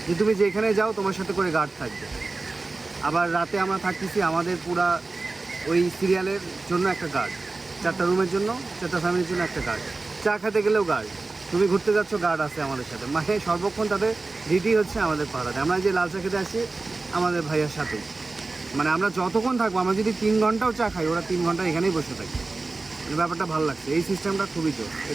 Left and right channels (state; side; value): quieter; left; 3.5 dB